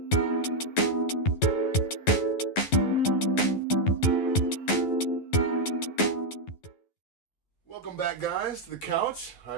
Welcome back, guys, to the Couch.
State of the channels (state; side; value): late; right; 11 ms